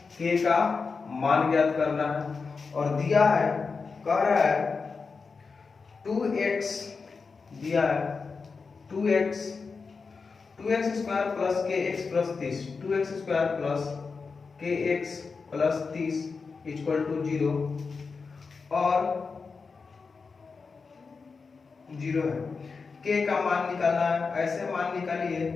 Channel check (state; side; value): quieter; right; 4.8 dB